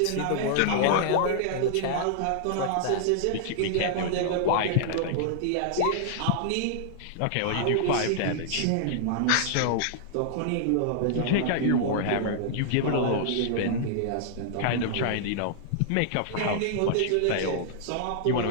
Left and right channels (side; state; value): both; different; correlation -0.01